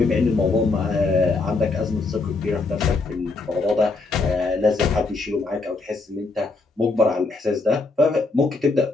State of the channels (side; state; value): right; quieter; 3.7 dB